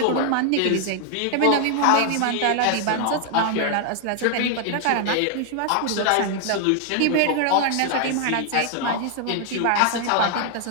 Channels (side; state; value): both; different; correlation 0.00